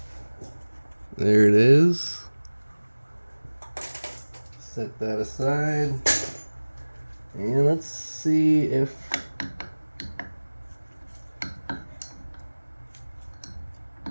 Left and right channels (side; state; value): both; inverted; correlation -1.00